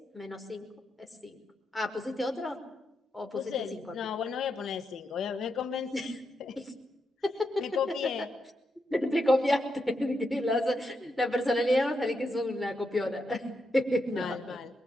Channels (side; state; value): both; normal; correlation 0.84